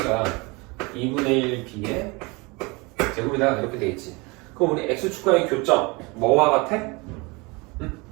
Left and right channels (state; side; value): quieter; left; 26.7 dB